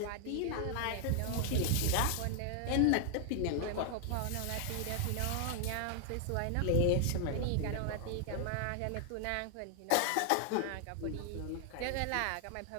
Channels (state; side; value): different; both; correlation 0.00